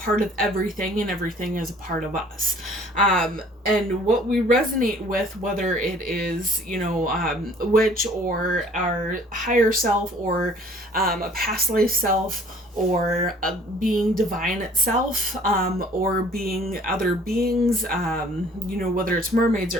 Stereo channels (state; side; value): normal; both; correlation 0.54